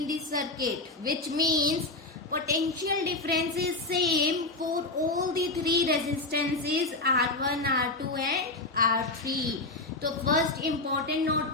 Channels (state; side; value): quieter; right; 3.0 dB